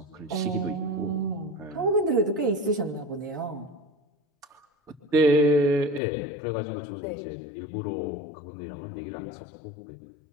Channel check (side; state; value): right; drops out; at 6.0 s